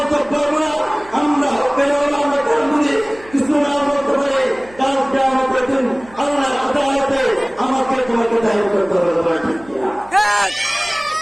পারবো না, আমরা হকের আমরা কারণ বুঝি কিছু না বলতে পারি। কালকে আমাকে দিন আল্লাহ আদালতে আমাকে তোমাকে দায়ী করতে হবে ঠিক কিনা?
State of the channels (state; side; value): noise; right; hum, 23 dB below the sound